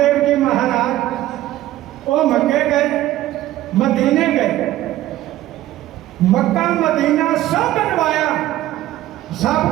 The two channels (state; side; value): quieter; left; 14.6 dB